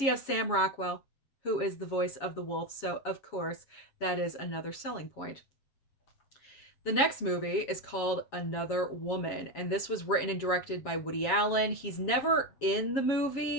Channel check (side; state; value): right; late; 7.3 ms